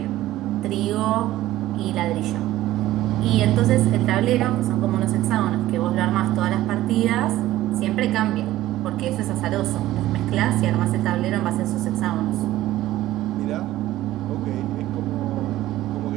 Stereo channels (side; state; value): left; quieter; 15.1 dB